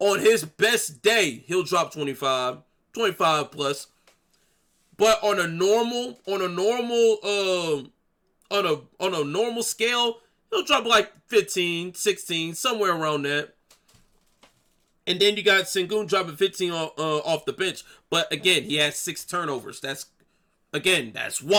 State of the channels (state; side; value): identical; both; correlation 1.00